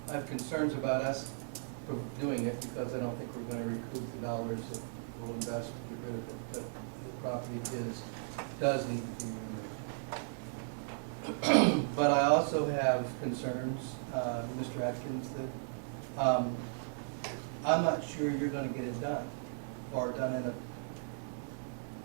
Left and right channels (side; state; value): left; silent; 54 dB below the other